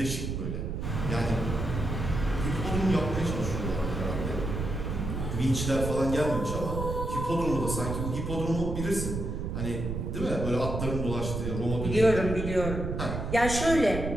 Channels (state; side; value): noise; right; rumble, 3 dB below the sound